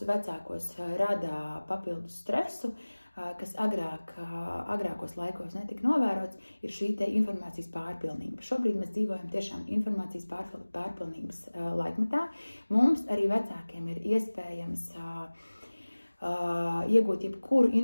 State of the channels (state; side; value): inverted; both; correlation -1.00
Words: vecākos rada papildus stresu, kas agrākos laikos netika novērots, ir šī te informācijas pārpilnība. Šobrīd mēs dzīvojam tiešām informācijas pārpilnības laikmetā. Mums arī vecākiem ir iespējams iegūt jebkuru